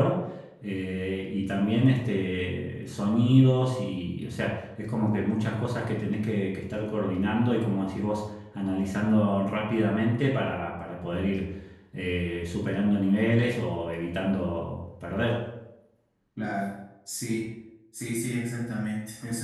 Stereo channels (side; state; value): both; identical; correlation 1.00